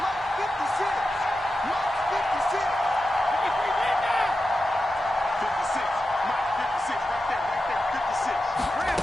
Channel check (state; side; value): normal; both; correlation 0.91